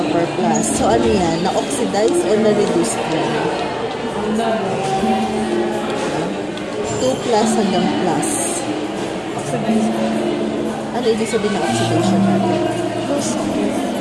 plus. So, ano yan? Na-oxidize or na-reduce yan? 2 plus hanggang plus. Oxidize. Ano ibig sabihin ng oxidation natin?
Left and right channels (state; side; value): identical; both; correlation 1.00